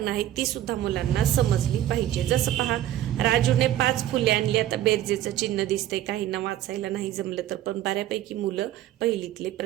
आहेत ती सुद्धा मुलांना समजली पाहिजे. जसं पहा, राजूने 5 फुले आणली. आता बेरजेचं चिन्ह दिसतंय, काहींना वाचायला नाही जमलं तर पण बऱ्यापैकी मुलं पहिलीतले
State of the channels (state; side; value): quieter; left; 12.7 dB